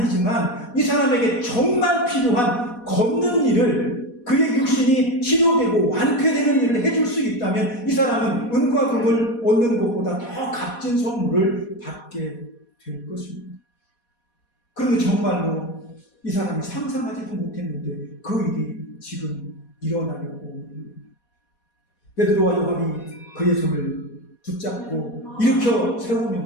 이 사람에게 정말 필요한 걷는 일을, 그의 육신이 치료되고 완쾌되는 일을 해줄 수 있다면 이 사람은 은과 금을 얻는 것보다 더 값진 선물을 받게 될 것입니다. 그런데 정말로 이 사람이 상상하지도 못했는데 그 일이 지금 일어나려고 합니다. 베드로와 요한이 그의 손을 붙잡고 일으켜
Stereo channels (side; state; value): right; late; 4.2 ms